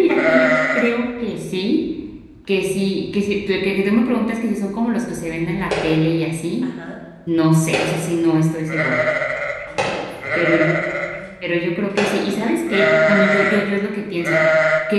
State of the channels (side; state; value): both; identical; correlation 1.00